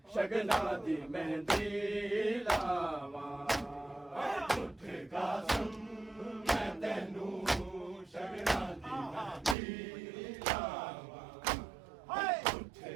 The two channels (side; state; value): left; drops out; at 9.6 s